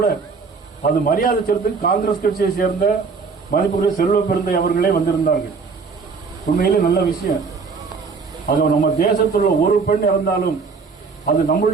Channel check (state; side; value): quieter; left; 4.9 dB